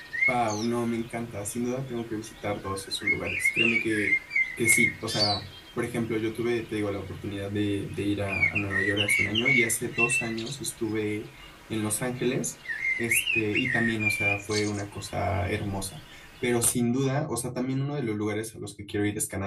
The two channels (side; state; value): both; identical; correlation 1.00